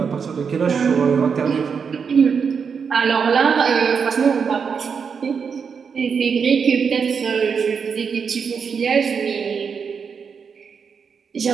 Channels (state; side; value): quieter; left; 6.2 dB